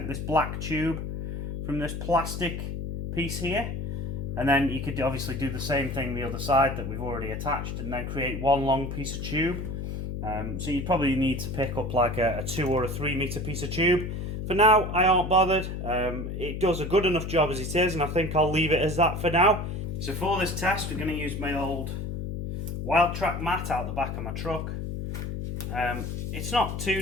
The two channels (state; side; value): noise; left; hum, 4 dB below the sound